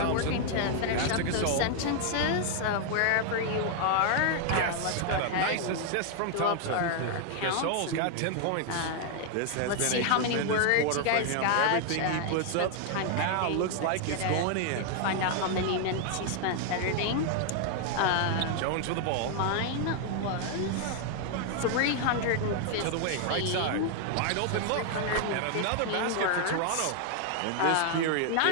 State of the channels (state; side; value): different; both; correlation 0.00